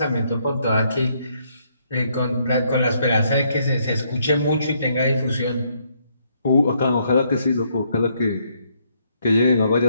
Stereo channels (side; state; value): both; inverted; correlation -0.72